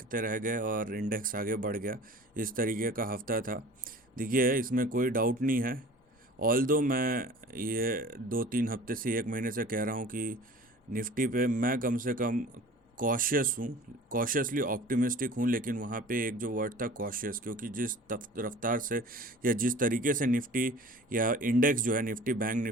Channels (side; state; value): both; normal; correlation 0.43